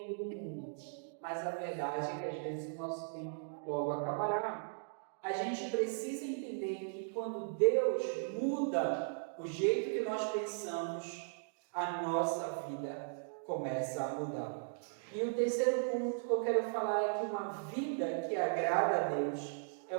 do mundo, mas a verdade é que às vezes o nosso tempo logo acabará. A gente precisa entender que quando Deus muda o jeito que nós pensamos, a nossa vida começa a mudar. E o terceiro ponto que eu quero falar é que uma vida que agrada a Deus é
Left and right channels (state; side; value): silent; left; digital silence